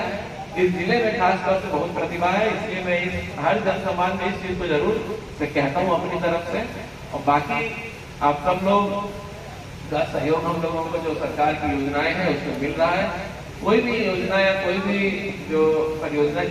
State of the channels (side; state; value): both; identical; correlation 1.00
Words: इस जिले में खासतौर से बहुत प्रतिभा है, इसलिए मैं हर जनसंवाद में इस चीज को जरूर से कहता हूँ अपनी तरफ से। और बाकी आप सब लोग का सहयोग हम लोगों को जो सरकार की योजनाएं हैं उसमें मिल रहा है। कोई भी योजना या कोई भी जो परियोजना